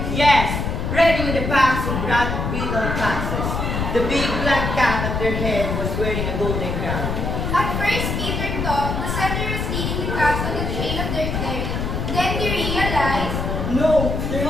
Yes, ready with the packs of broad beetle foxes. The big black cat at their head was wearing a golden crown. At first, Peter thought the setter was leading the cats on the trail of their ferry. Then he realized No, they're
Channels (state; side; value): noise; left; rumble, 2 dB below the sound